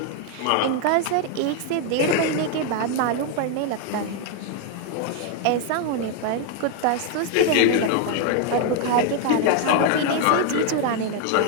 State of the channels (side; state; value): both; different; correlation 0.00